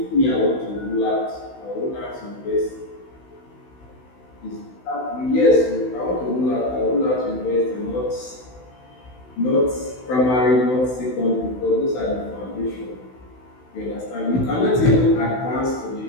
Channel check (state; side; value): late; right; 16 ms